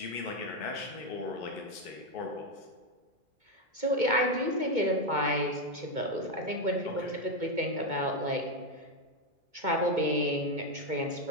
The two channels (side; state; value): left; late; 2.2 ms